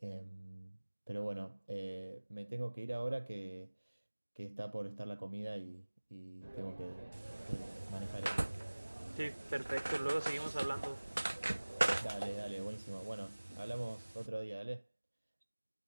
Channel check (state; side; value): inverted; both; correlation -1.00